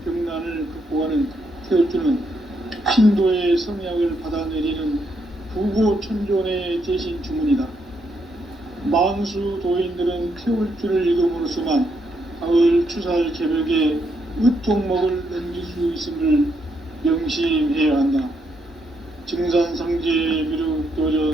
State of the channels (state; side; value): normal; both; correlation 0.77